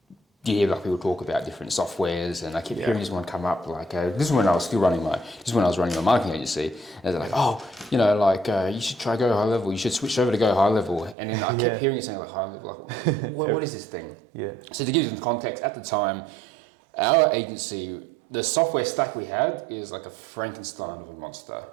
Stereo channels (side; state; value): left; drops out; at 11.2 s